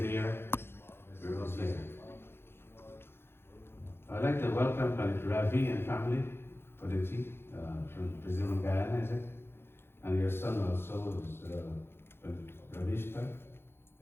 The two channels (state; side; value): late; right; 0.11 ms